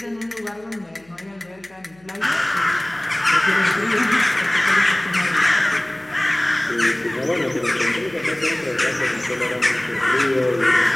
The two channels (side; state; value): left; noise; hum, 30 dB below the sound